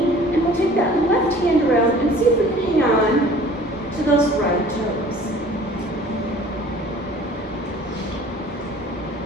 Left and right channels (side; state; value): both; normal; correlation 0.49